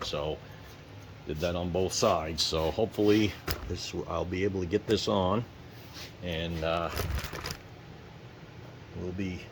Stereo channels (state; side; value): identical; both; correlation 1.00